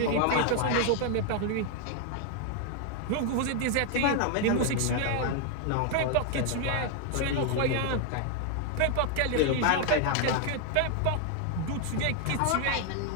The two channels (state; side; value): different; both; correlation 0.00